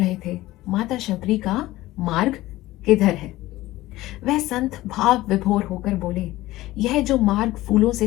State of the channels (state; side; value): quieter; right; 17.2 dB